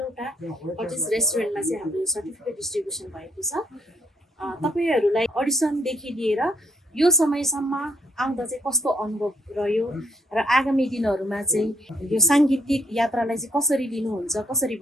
कटेज रेस्टुरेन्टमा चाहिँ हाम्रो यो सर्टिफिकेट डिस्ट्रिब्युसन भएको छ। तपाईँहरूलाई अडिसनदेखि लिएर यो समयसम्म आउँदा चाहिँ कस्तो अनुभव रह्यो र आगामी दिनहरूमा चाहिँ यो साङ्गीतिक यात्रालाई चाहिँ कसरी लिनुहुन्छ, कसरी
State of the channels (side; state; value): both; normal; correlation 0.72